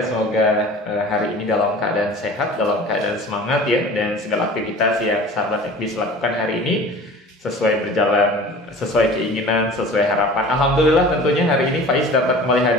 hari ini dalam keadaan sehat, dalam keadaan semangat ya, dan segala aktivitas yang sahabat Ekbis lakukan hari ini sesuai berjalan, sesuai keinginan, sesuai harapan. Alhamdulillah tentunya hari ini Faiz dapat kembali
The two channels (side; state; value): both; normal; correlation 0.42